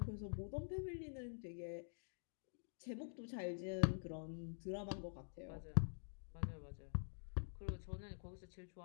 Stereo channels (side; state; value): right; silent; digital silence